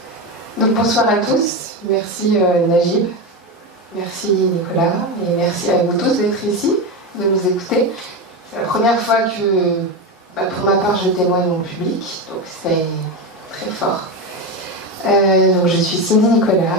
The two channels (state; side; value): normal; both; correlation 0.16